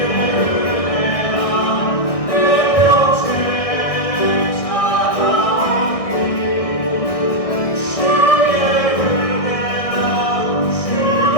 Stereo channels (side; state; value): right; late; 1.6 ms